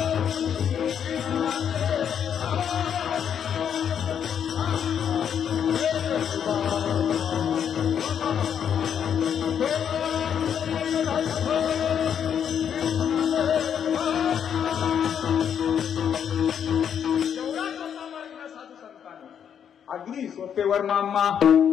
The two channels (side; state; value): right; quieter; 8.4 dB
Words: अगदी सोपेवर मामा